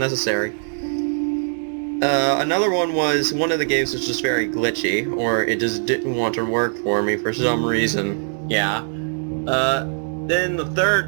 Another one was, one of the games was just very glitchy, or it just didn't want to work for me for some reason. Yeah. Then the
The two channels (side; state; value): left; silent; 65 dB below the other